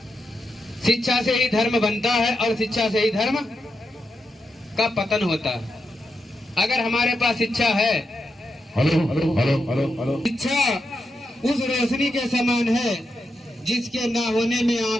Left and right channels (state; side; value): normal; both; correlation 0.86